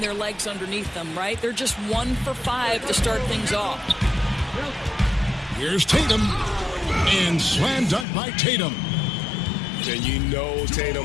legs underneath them, right? They're just 1 for 5 to start things off. Here's Tatum. And slam dunk by Tatum. And you know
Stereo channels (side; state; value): right; drops out; at 8.1 s